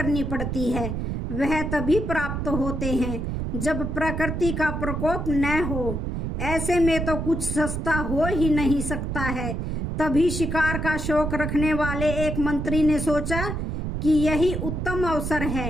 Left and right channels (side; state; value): right; noise; rumble, 3 dB below the sound